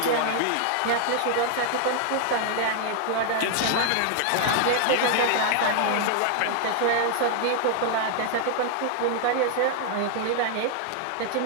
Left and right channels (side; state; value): both; different; correlation 0.00